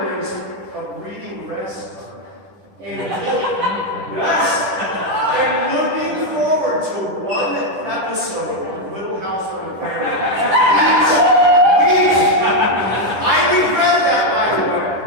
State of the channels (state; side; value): late; left; 10 ms